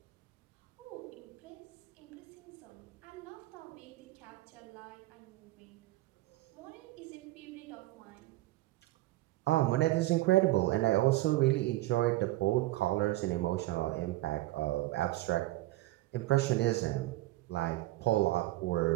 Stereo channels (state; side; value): quieter; left; 17.5 dB